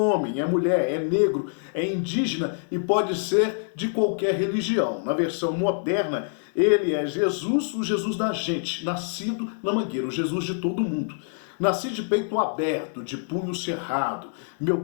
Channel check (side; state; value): right; silent; digital silence